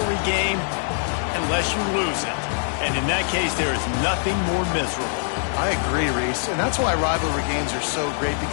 game unless you lose it. And in that case, there is nothing more miserable. I agree, Reese. And that's why rivalry games are so great,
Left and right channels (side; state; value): right; silent; 58 dB below the other